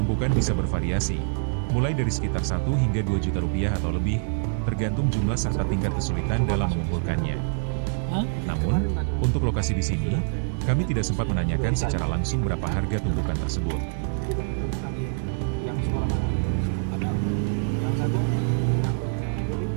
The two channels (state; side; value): silent; left; digital silence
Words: bisa bervariasi, mulai dari sekitar 1 hingga 2 juta rupiah atau lebih, tergantung jumlah serta tingkat kesulitan dalam mengumpulkannya. hah? Namun, untuk lokasi di sini, kami tidak sempat menanyakan secara langsung berapa harga tumpukan tersebut. Yang sekolah mana? Ada. Yang satu?